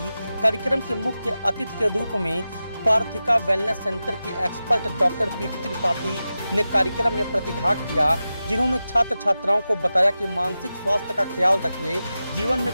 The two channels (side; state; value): both; inverted; correlation -0.93